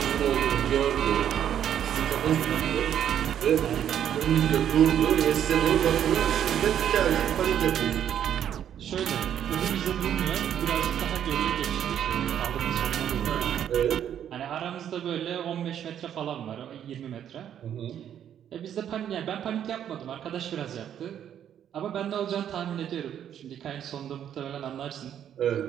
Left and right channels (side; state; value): left; quieter; 9.7 dB